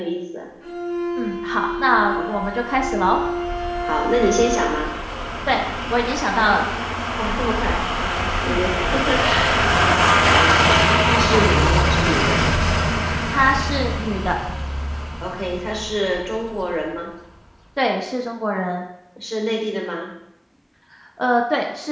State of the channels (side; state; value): both; identical; correlation 1.00